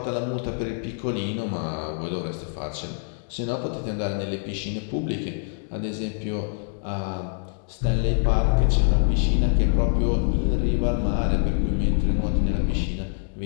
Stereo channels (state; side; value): silent; right; 62 dB below the other